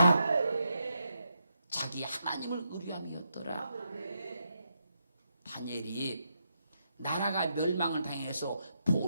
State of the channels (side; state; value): both; inverted; correlation -0.82